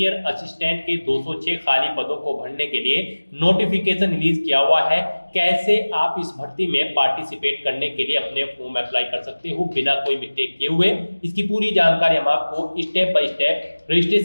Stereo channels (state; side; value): inverted; both; correlation -1.00